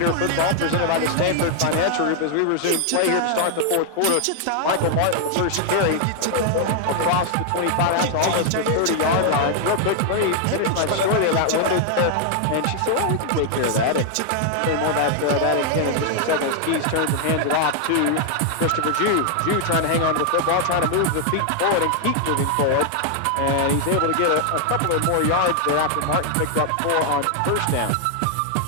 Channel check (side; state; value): both; different; correlation 0.00